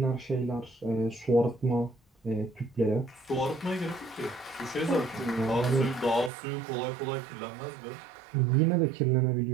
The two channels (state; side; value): drops out; left; at 6.3 s